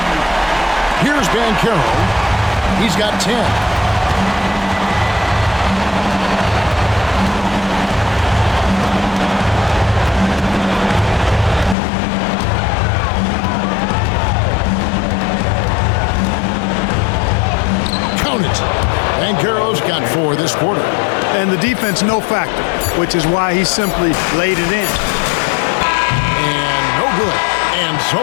Here's Banchero. He's got 10. Count it. Banchero's got 4 this quarter. And the defense, no factor, which is why he simply laid it in. And no good. And so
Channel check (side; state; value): right; drops out; at 11.8 s